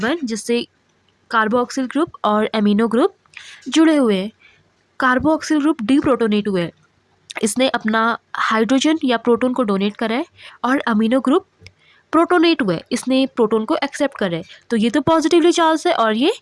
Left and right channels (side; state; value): both; identical; correlation 1.00